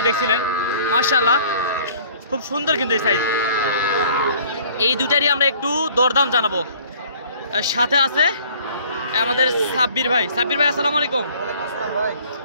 দেখছিলেন মাশাআল্লাহ খুব সুন্দর কিন্তু এই সাইজ। এই দুটারই আমরা একটু দরদাম জানাবো। সাথে আছে আমাদের সাব্বির ভাই। সাব্বির ভাই আসসালামু আলাইকুম।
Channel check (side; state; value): both; inverted; correlation -0.54